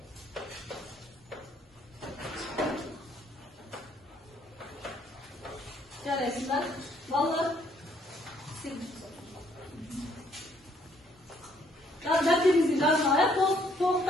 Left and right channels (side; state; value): both; normal; correlation 0.67